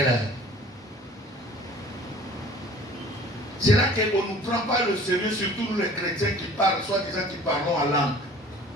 heure. C'est là qu'on ne nous prend pas le sérieux, surtout nous les chrétiens qui parlent, soi-disant qui parlons en langue.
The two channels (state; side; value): normal; both; correlation 0.48